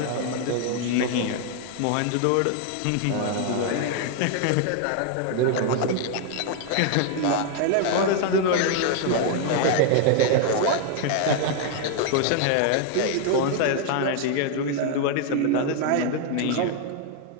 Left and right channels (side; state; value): both; different; correlation 0.00